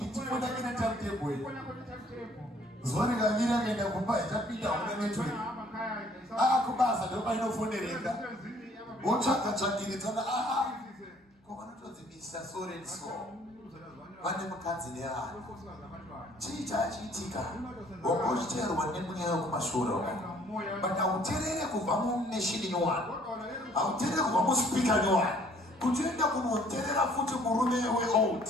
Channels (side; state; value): both; normal; correlation 0.59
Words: Tifoni yake na timetable. Zwani kaviri akaenda kumba itapinda une network. Akubaza ndoba inofonereka. Wotsvaka-tsvakiridzana ko vanotodzi Mr. So and so. Vane mukadzi neana. Chii chachiitika? Wakochiteerwa nemweya wekumashure uko. But hauteerere kubva muneshini nyowani. Hauteerere kubva muspeaker nyowani. Kuti uende kunoteerera futi murume weold.